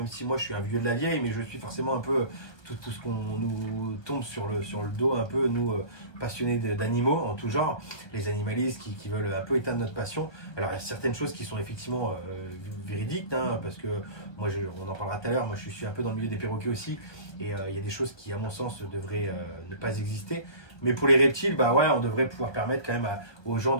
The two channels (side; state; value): right; late; 1.2 ms